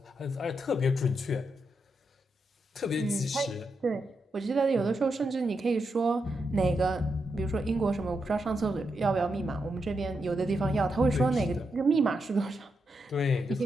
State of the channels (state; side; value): normal; both; correlation 0.84